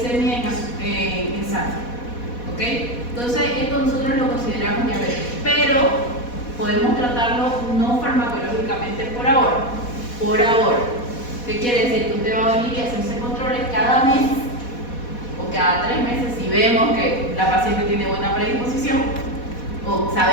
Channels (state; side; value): late; right; 4.1 ms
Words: en sangre. ¿Ok? Entonces esto nosotros lo consideramos diabetes, pero podemos tratarlo no farmacológicamente por ahora. Por ahora. ¿Qué quiere decir? Que usted va a venir y hacerse controles cada mes o cada 3 meses si vemos que la paciente tiene buena predisposición o